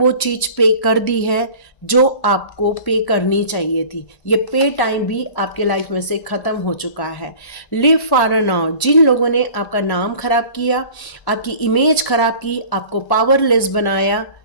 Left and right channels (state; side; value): late; right; 1.1 ms